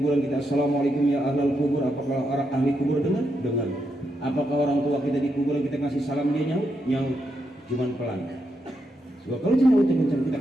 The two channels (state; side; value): normal; both; correlation 0.82